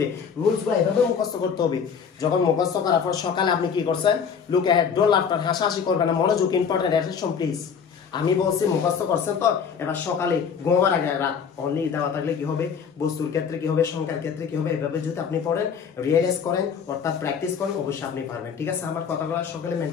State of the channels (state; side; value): quieter; right; 6.7 dB